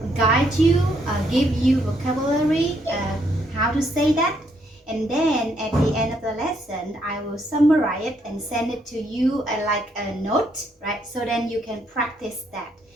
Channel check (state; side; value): normal; both; correlation 0.73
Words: guide you, give you vocabulary, how to say that, and then at the end of the lesson I will summarize it and send it to you like a note, right? So then you can practice that,